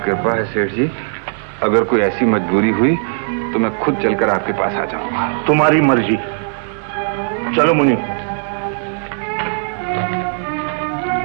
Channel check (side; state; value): left; silent; digital silence